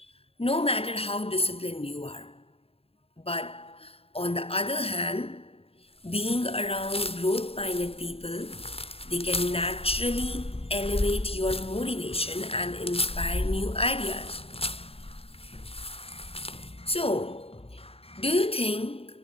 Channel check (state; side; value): late; right; 0.28 ms